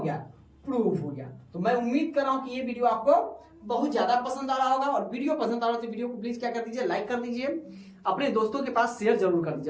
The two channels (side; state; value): both; identical; correlation 1.00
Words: गया, प्रूफ हो गया। तो मैं उम्मीद कर रहा हूं कि ये वीडियो आपको बहुत ज्यादा पसंद आ रहा होगा, और वीडियो पसंद आ रहा है तो वीडियो को प्लीज क्या कर दीजिए, लाइक कर दीजिए। अपने दोस्तों के पास शेयर जरूर कर